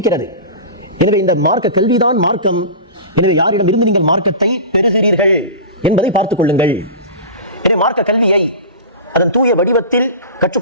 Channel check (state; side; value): inverted; both; correlation -0.30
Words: எனவே இந்த மார்க்க கல்விதான் மார்க்கம். எனவே யாரிடம் இருந்து நீங்கள் மார்க்கத்தை பெறுகிறீர்கள் என்பதை பார்த்துக் கொள்ளுங்கள். எனவே மார்க்க கல்வியை அதன் தூய வடிவத்தில்